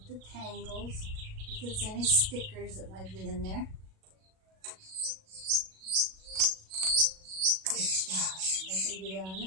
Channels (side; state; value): left; late; 37 ms